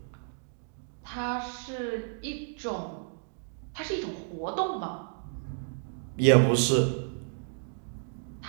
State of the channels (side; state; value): left; silent; 57 dB below the other